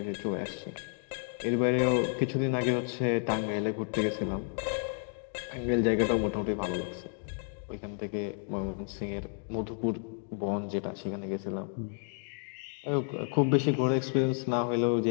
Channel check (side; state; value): right; silent; 57 dB below the other